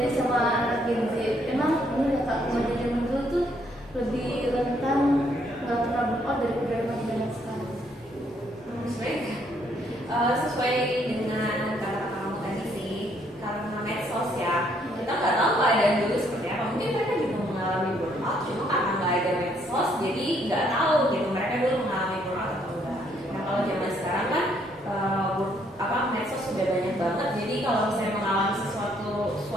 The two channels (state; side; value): normal; both; correlation 0.69